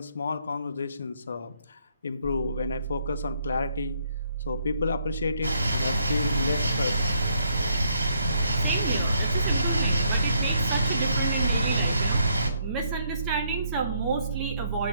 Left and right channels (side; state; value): both; inverted; correlation -0.72